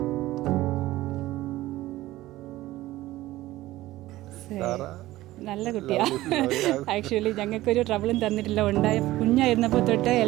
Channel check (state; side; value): quieter; left; 16.6 dB